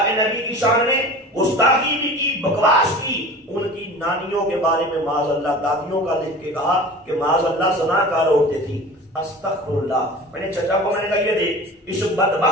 کے نبی کی شان میں گستاخی بھی کی، بکواس کی. ان کی نانیوں کے بارے میں معاذ اللہ دادیوں کا لکھ کے کہا کہ معاذ اللہ زناکار عورتیں تھیں. استغفر اللہ. میں نے چچا کو میں نے کہا یہ دیکھ، اس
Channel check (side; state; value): both; normal; correlation 0.38